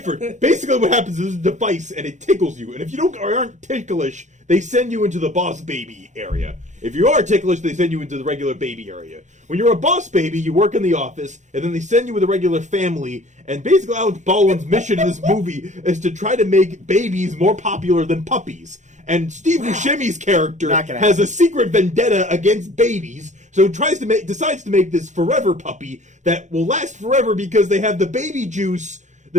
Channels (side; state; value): left; late; 0.35 ms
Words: Basically, what happens is there's a device and it tickles you, and if you don't or aren't ticklish, they send you into the boss baby area. If you are ticklish, they send you into the regular baby area. When you're a boss baby, you work in the office, and then they send you with a regular family. And basically, Alec Baldwin's mission in this movie is to try to make babies more popular than puppies. And Steve Buscemi's character Not gonna has happen. a secret vendetta against babies, so decides to make this forever puppy that will last forever because they have the baby juice,